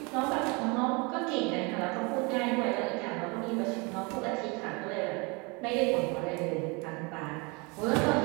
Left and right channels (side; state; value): left; quieter; 28.9 dB